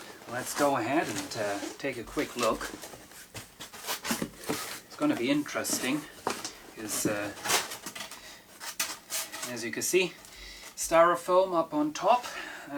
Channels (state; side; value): identical; both; correlation 1.00